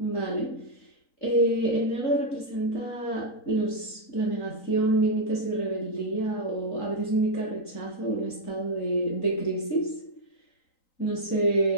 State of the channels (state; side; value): late; right; 3.9 ms